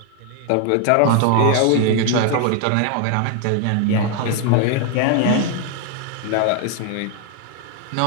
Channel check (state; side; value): different; both; correlation 0.01